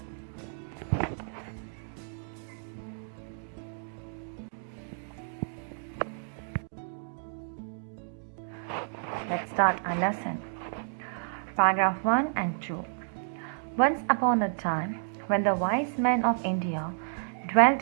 Let's start our lesson. Paragraph 1 and 2. Once upon a time, when the wise men of India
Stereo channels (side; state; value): left; silent; digital silence